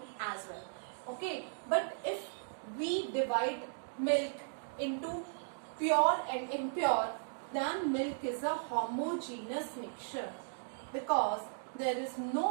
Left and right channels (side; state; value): left; silent; digital silence